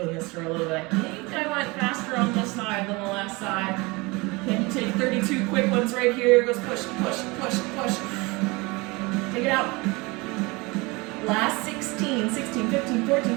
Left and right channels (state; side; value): quieter; left; 25.1 dB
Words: this for a little bit. I think I went faster on this side than the last side. Can you take 32 quick ones right here? Goes push, push, push, push. Take it out. Last 16, 16, 15,